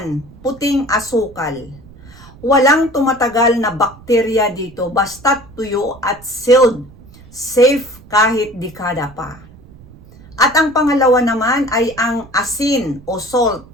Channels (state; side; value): noise; right; rumble, 22 dB below the sound